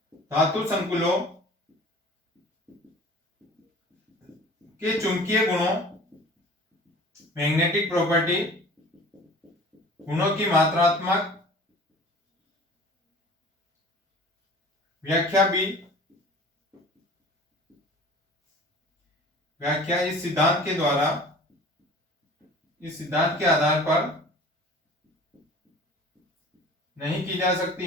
धातु संकुलों के चुंबकीय गुणों मैग्नेटिक प्रॉपर्टी गुणों की मात्रात्मक व्याख्या इस सिद्धांत के आधार पर नहीं की जा सकती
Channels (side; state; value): both; normal; correlation 0.44